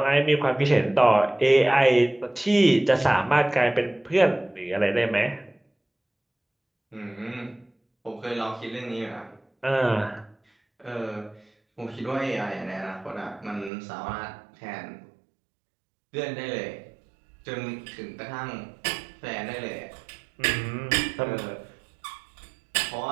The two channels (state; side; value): drops out; left; at 13.7 s